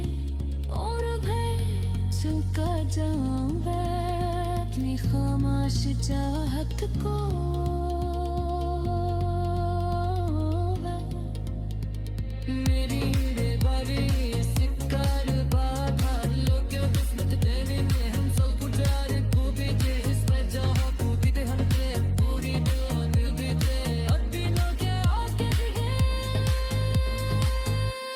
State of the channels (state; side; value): identical; both; correlation 1.00